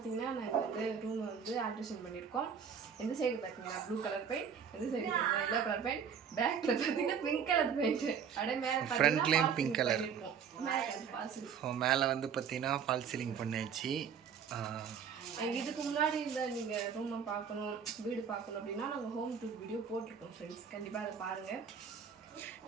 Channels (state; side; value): quieter; left; 7.1 dB